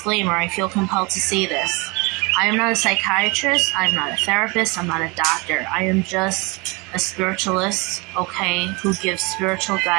I feel compelled to say this. I am not a psychiatrist, I'm not a therapist, I'm not a doctor. I am just a spiritualist, okay, who gives spiritual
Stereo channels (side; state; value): left; quieter; 27.5 dB